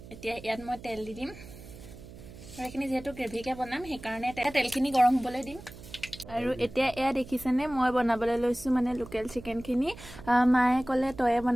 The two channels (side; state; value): right; noise; hum, 17 dB below the sound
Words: এতিয়া ইয়াত মই তেল দি দিম, আৰু এইখিনি যিহেতু গ্ৰেভিকে বনাম সেইকাৰণে তেলখিনি গৰম হ'বলৈ দিম। আৰু এতিয়া এয়া দেখিছেনে মই বনাবলৈ লৈছোঁ মানে লোকেল চিকেনখিনি। মায়ে ক'লে তয়ে